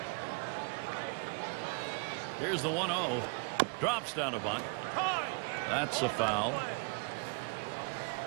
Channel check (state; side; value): quieter; left; 36.7 dB